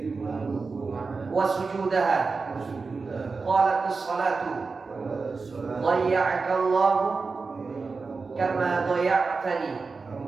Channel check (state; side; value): quieter; left; 4.4 dB